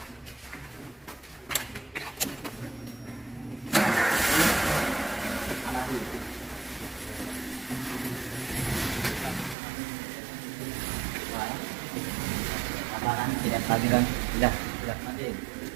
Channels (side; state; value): left; drops out; at 9.6 s